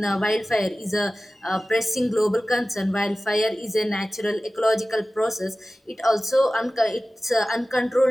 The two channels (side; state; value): both; normal; correlation 0.96